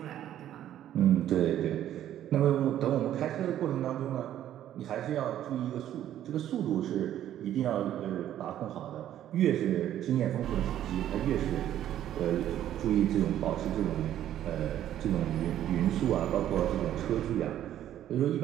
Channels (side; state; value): left; quieter; 11.6 dB